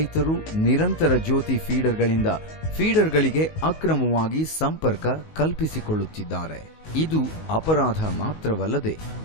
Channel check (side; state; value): right; late; 19 ms